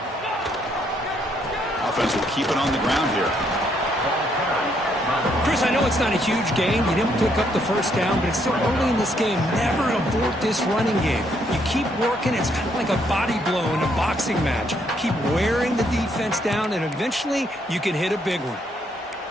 Offense will keep it on the ground here. Chris, I know it's not a huge gain. You didn't pick up the first down, but it's still early in this game. Never abort this running game. You keep working. It's kind of like a body blow in a boxing match. Keep wearing the defense down, and eventually you can hit a big one.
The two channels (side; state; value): both; normal; correlation 0.72